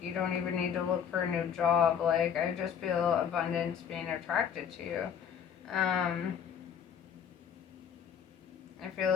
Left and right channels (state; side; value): quieter; right; 8.0 dB